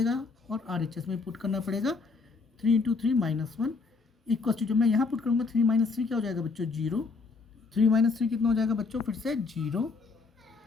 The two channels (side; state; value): right; quieter; 4.4 dB